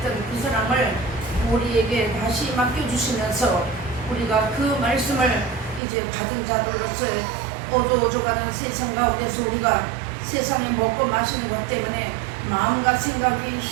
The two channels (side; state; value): left; drops out; at 5.8 s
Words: 그 사랑을 우리에게 다시 맡겨주시면서 우리가 그 말씀을 이제 받은 자들로서 어두워져가는 세상 가운데서 우리가 세상에 먹고 마시는 것 때문에 마음과 생각이